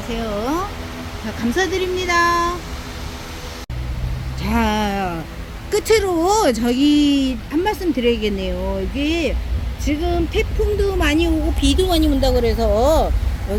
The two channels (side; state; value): both; identical; correlation 1.00